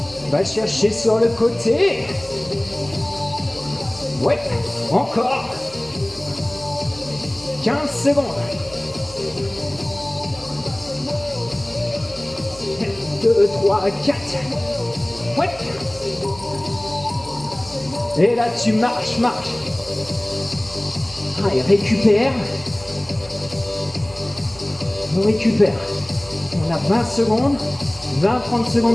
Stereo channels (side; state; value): right; noise; hum, 21 dB below the sound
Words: Va chercher sur le côté. Ouais, encore. 15 secondes. 2, 3, 4. Ouais. Et là, tu marches, marches. Allez, récupère. On récupère. On a 20 secondes. 20-30